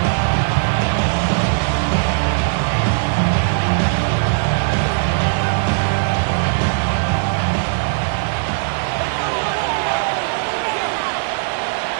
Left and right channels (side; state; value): left; silent; digital silence